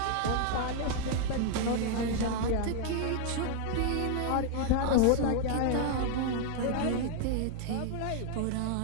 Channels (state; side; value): different; both; correlation 0.00